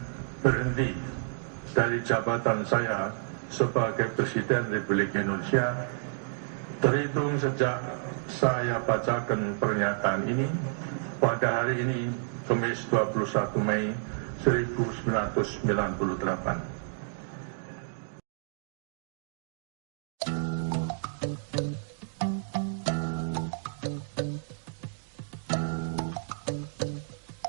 berhenti dari jabatan saya sebagai Presiden Republik Indonesia terhitung sejak saya bacakan pernyataan ini pada hari ini, Kamis 21 Mei 1998.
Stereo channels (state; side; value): silent; left; digital silence